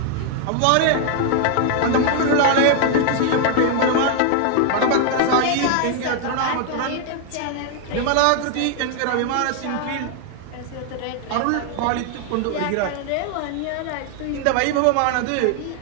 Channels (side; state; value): both; different; correlation 0.00